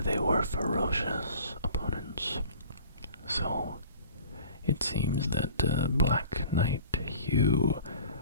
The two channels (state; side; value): inverted; both; correlation -0.45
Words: they were ferocious opponents. So it seems that Black Knight Hugh